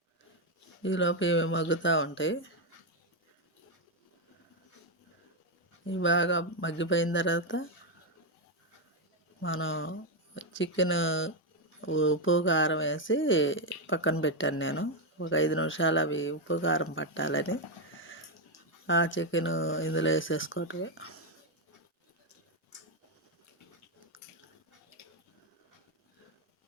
ఈలోపు ఇవి మగ్గుతూ ఉంటాయి. ఇవి బాగా మగ్గిపోయిన తర్వాత మనం చికెన్ ఉప్పు కారం వేసి పక్కన పెట్టాను. నేను ఒక 5 నిమిషాలు అవి ఉప్పు కారం పట్టాలని ఆ చికెన్ ఇందులో వేసేసుకోవటమే.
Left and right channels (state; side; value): normal; both; correlation 0.04